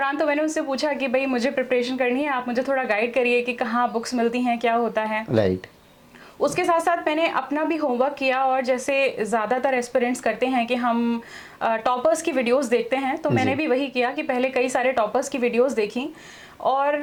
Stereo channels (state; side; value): identical; both; correlation 1.00